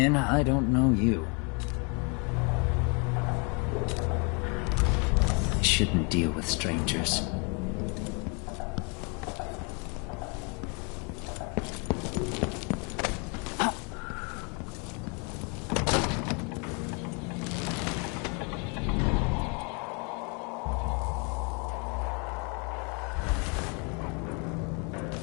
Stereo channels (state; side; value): quieter; right; 34.3 dB